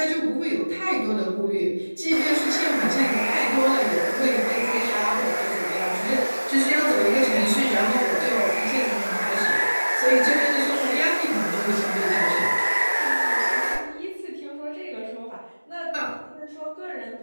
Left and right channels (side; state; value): both; inverted; correlation -1.00